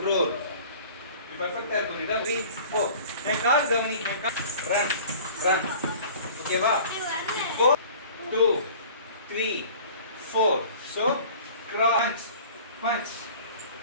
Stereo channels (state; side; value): inverted; both; correlation -0.45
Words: roll. Perfect है तो इधर 3, 4. एक कार गवनी, एक car. Run, run. Okay va? 4, 2, 3, 4. So crunch, punch.